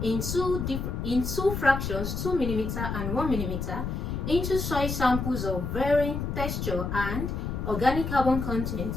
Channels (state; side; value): noise; left; rumble, 3 dB below the sound